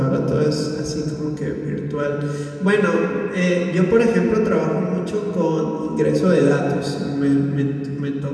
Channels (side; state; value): both; identical; correlation 1.00